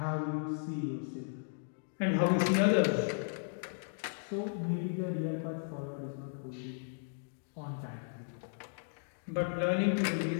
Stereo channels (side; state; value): right; silent; digital silence